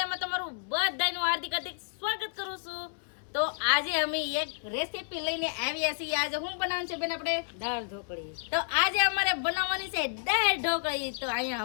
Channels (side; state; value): right; silent; 57 dB below the other